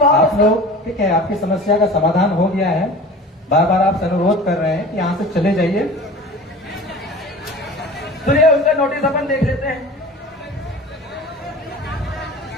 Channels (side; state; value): both; normal; correlation 0.39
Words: आप भाव लोग, ठीक है, आपकी समस्या का समाधान हो गया है। बार बार आप अनुरोध कर रहे हैं कि यहाँ से चले जाइए। सुनिए, उनका नोटिस अपन देख लेते हैं।